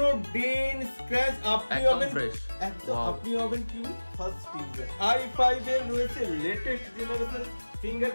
ডেন স্ক্র্যাচ আপনি হবেন একদম, আপনি হবেন কি ফার্স্ট ইউজার। i5 এর রয়েছে লেটেস্ট জেনারেশন,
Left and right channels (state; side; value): inverted; both; correlation -1.00